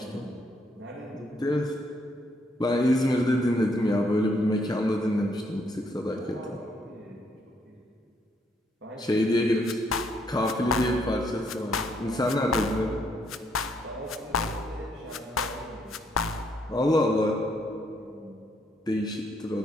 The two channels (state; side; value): normal; both; correlation 0.72